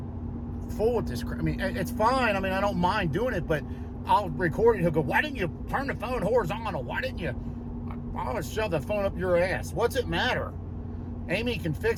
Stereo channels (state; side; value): identical; both; correlation 1.00